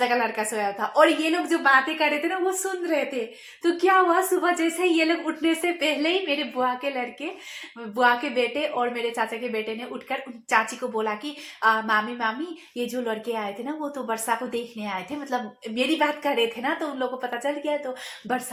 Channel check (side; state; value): both; identical; correlation 1.00